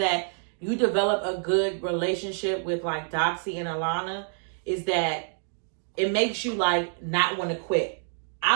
you develop a good relationship with like Doxy and Alana is that it makes you like not want to quit.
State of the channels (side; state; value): left; silent; digital silence